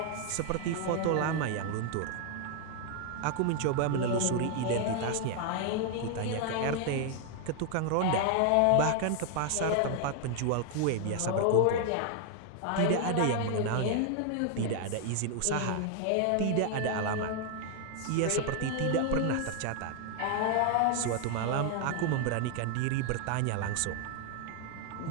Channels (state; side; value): different; both; correlation 0.00